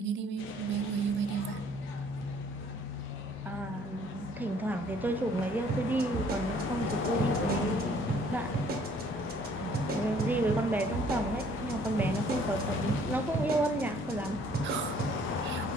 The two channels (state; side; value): normal; both; correlation 0.59